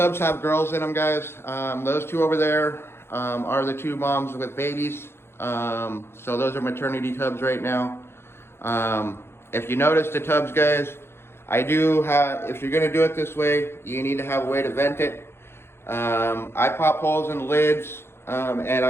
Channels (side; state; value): right; late; 0.12 ms